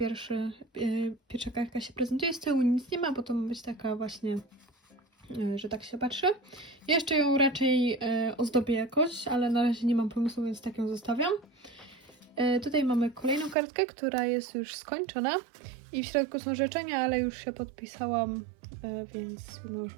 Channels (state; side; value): drops out; left; at 13.6 s